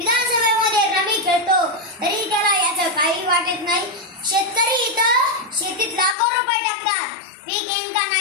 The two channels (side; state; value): right; drops out; at 6.2 s